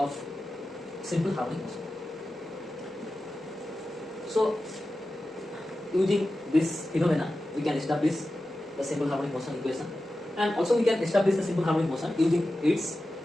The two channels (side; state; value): both; normal; correlation 0.93